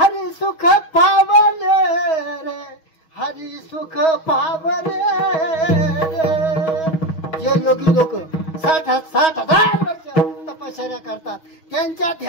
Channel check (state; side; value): late; right; 6.3 ms